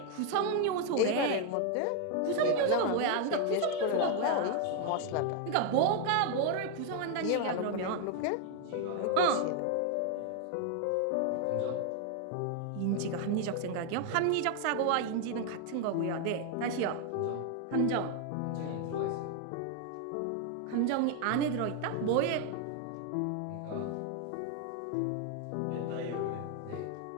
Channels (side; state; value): both; different; correlation 0.01